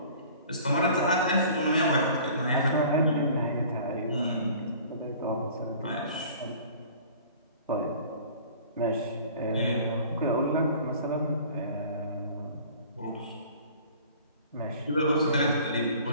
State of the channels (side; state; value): both; inverted; correlation -0.47